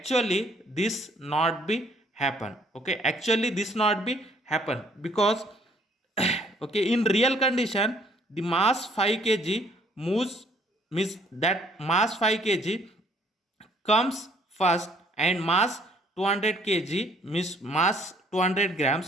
this not be happen. Okay, actually this not be happen because okay, in real condition the mass 5 kg moves, means that mass 5 kg comes first, and mass 200 kg, means mass 200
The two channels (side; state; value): both; normal; correlation 0.62